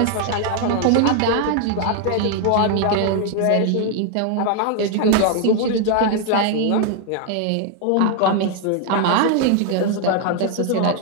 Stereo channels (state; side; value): different; both; correlation 0.00